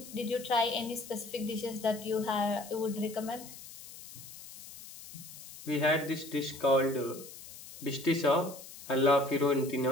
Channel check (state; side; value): noise; left; hiss, 15 dB below the sound